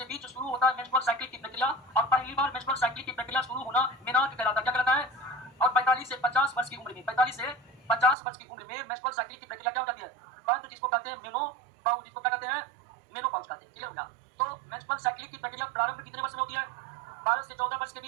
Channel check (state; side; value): drops out; left; at 8.2 s